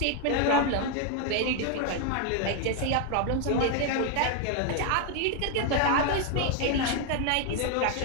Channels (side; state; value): both; different; correlation 0.00